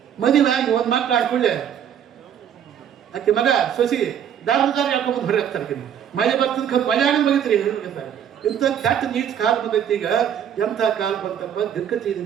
ಮದುವೆ ಆಗಿ ಒಂದು ಮಕ್ಕಳು ಹಾಕೊಳ್ಳೆ ಆಕೆ ಮಗ ಸೊಸಿ ದಾರ ಹೇಳ್ಕೊಂಬಂದು ಹೊರಗೆ ಹಾಕ್ತಾರೆ. ಮಳೆ ಬರ್ತದ ಮಳೆ ಆಗ ಬಗಿತ್ರಿ ಹೇಳ್ತಾರೆ. ಇಂಥ ಕೆಟ್ಟ ನೀಚ್ ಕಾಲ ಬಂದೈತಿ. ಈಗ ಎಂಥ ಕಾಲ ಬಂತಪ್ಪ, ದಿಕ್ಕತಿ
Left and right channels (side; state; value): left; quieter; 9.1 dB